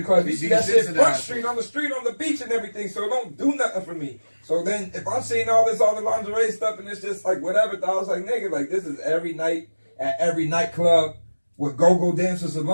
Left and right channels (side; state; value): both; inverted; correlation -1.00